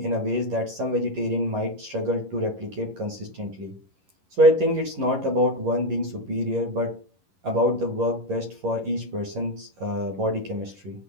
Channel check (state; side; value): late; left; 11 ms